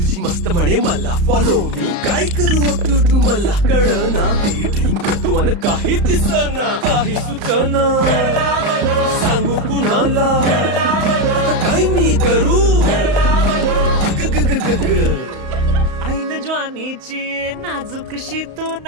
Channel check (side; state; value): left; late; 34 ms